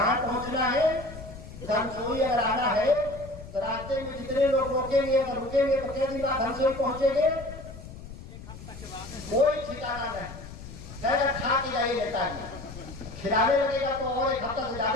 पहुंचना है? धनसोई अगर आना है तो रास्ते में जितने लोग रोकेंगे, अगर रुकेंगे तो कितने दिन बाद धनसोई पहुंचेंगे? कोई ठिकाना नहीं। कहेगा खा के जाइए नेताजी, खिलाने लगेगा तो और 1 हफ्ता से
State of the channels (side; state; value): left; noise; rumble, 14 dB below the sound